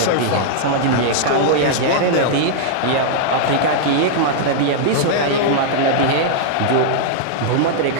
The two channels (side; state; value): both; different; correlation -0.01